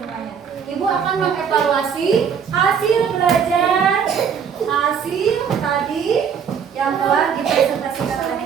Ibu akan mengevaluasi hasil belajar, hasil tadi yang telah dipresentasikan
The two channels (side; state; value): left; quieter; 7.1 dB